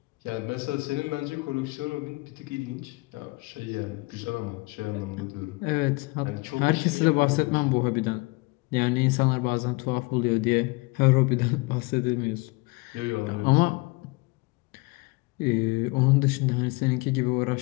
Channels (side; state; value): right; quieter; 25.7 dB